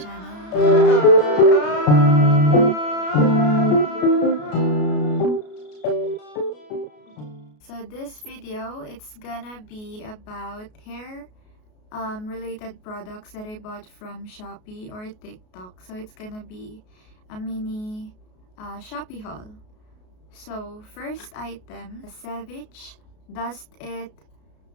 So this video, it's gonna be about hair related products that I bought from Shopee or TikTok. So it's gonna be a mini Shopee haul. So first item, Savage Dust It.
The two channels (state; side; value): late; right; 33 ms